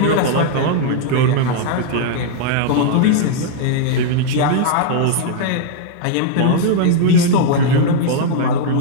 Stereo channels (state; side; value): different; both; correlation 0.00